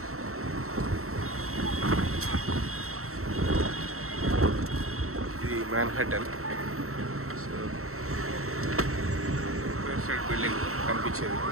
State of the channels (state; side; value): late; left; 0.63 ms